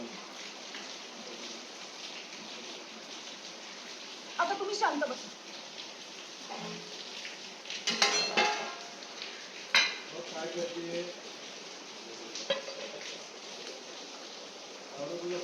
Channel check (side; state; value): both; identical; correlation 1.00